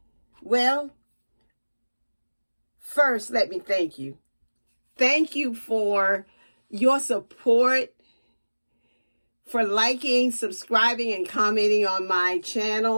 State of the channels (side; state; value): both; inverted; correlation -1.00